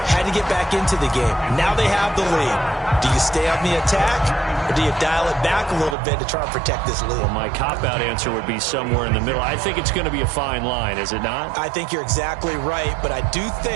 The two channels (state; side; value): drops out; left; at 6.0 s